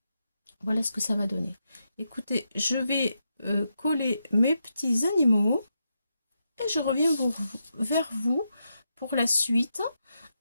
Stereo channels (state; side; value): inverted; both; correlation -0.84